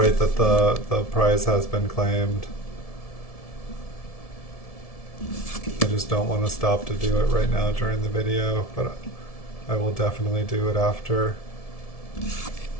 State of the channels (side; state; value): right; late; 1.7 ms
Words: that the prize has been claimed. I just don't want to stop to do it right now during the video, but I will definitely do it after.